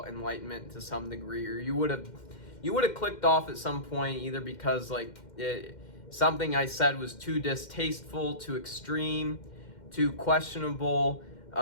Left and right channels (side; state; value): right; late; 2.1 ms